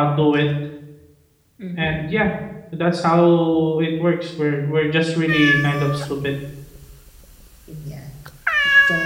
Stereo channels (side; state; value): both; identical; correlation 1.00